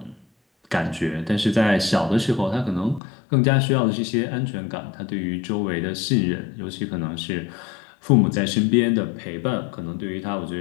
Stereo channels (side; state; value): right; drops out; at 3.0 s